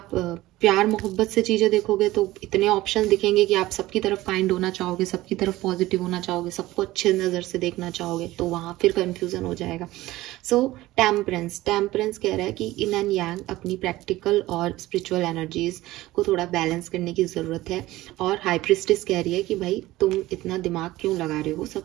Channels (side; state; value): left; quieter; 17.3 dB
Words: प्यार मोहब्बत से चीज़ें देखोगे तो इतने ऑप्शन दिखेंगे कि आप सबकी तरफ काइंड होना चाहोगे, सबकी तरफ पॉजिटिव होना चाहोगे, सबको अच्छे नज़र से देखना चाहोगे, तो वहाँ फिर कंफ्यूजन हो जाएगा। सो टेम्परेंस कह रहा है कि इन एंड यांग अपनी प्रैक्टिकल और स्पिरिचुअल एनर्जीज को थोड़ा बैलेंस करने की ज़रूरत है। और हाई प्रिस्टिस कह रही है कि भाई तुम इतना दिमाग क्यों लगा रहे हो,